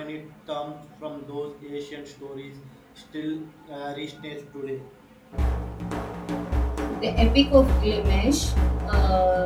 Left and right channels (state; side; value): identical; both; correlation 1.00